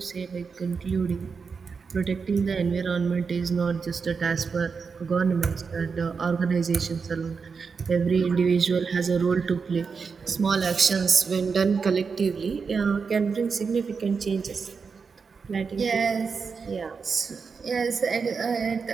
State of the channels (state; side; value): quieter; left; 5.4 dB